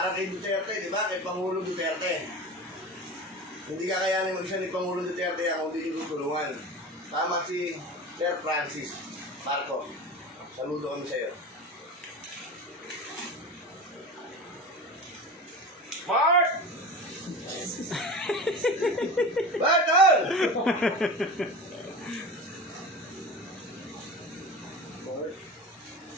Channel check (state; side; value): normal; both; correlation 0.31